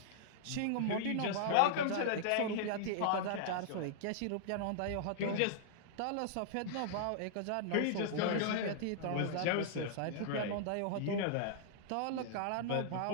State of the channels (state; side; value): different; both; correlation -0.01